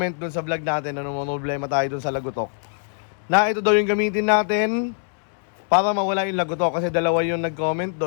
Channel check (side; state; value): right; silent; 63 dB below the other